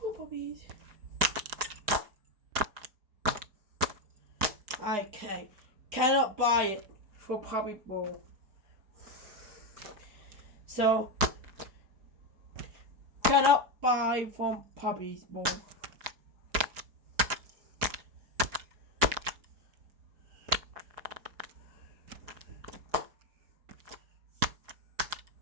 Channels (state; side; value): late; left; 4.8 ms